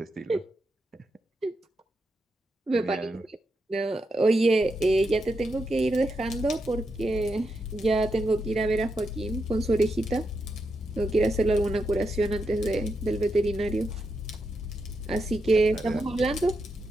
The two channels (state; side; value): normal; both; correlation 0.84